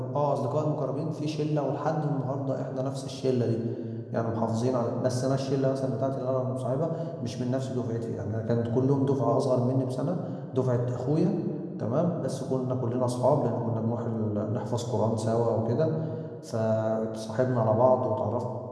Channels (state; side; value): identical; both; correlation 1.00